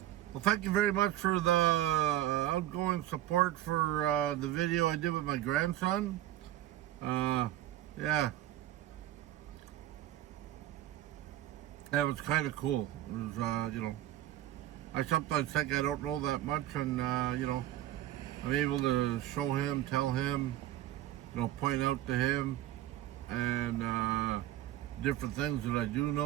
Well, thank you very much for the outgoing support for the video I did with my grandson. Yeah. That was kind of cool. It was, I sometimes think I don't know that much, and, I'm able to show him, tell him, point out to him, and different things that I do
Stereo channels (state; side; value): quieter; left; 13.6 dB